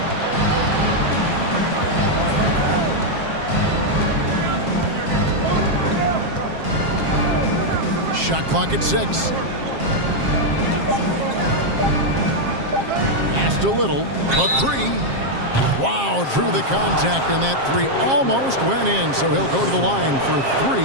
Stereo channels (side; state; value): left; late; 7.5 ms